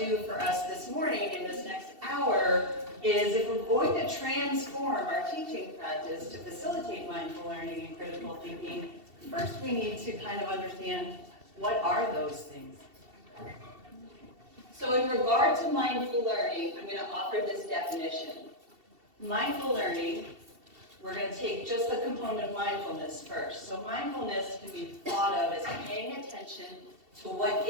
do for us this morning in this next hour is, if we're going to transform our teaching practice to facilitate mindful learning and critical thinking, first we need to kind of understand, what are those things? So in regard to mindful learning, I'm going to offer this definition. Mindful learning, we're going to take just the component of mindfulness first. So mindfulness can be thought of as paying attention to what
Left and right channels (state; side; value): late; left; 2.7 ms